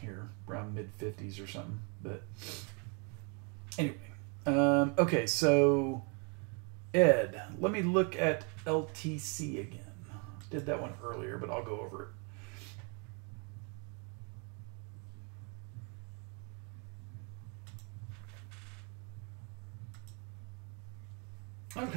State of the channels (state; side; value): quieter; left; 36.3 dB